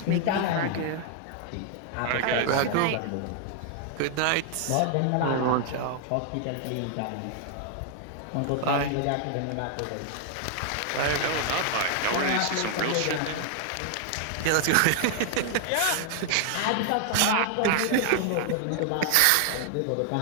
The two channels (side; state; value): both; different; correlation 0.00